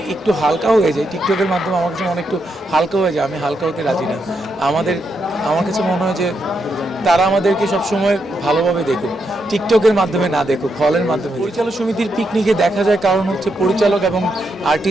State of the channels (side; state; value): both; normal; correlation 0.81